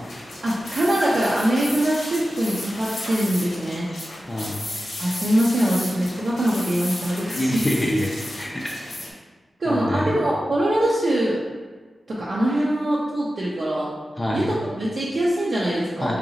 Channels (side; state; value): both; normal; correlation 0.93